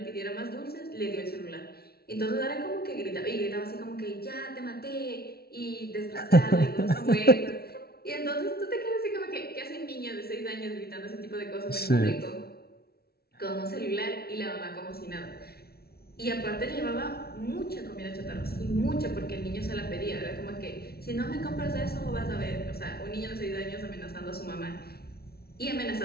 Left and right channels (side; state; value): right; late; 0.45 ms